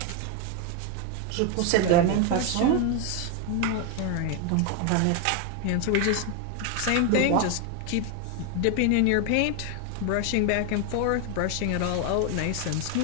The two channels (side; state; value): both; different; correlation 0.01